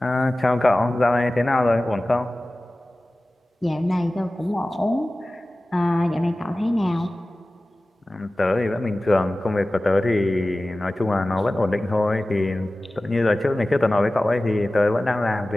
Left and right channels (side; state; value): both; normal; correlation 0.97